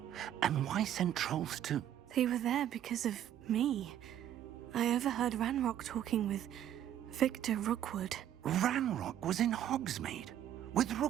And why send trolls to... They were there because of me. I overheard Ranrock talking with Victor Rookwood. Ranrock was in Hogsmeade? With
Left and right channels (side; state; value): left; quieter; 11.0 dB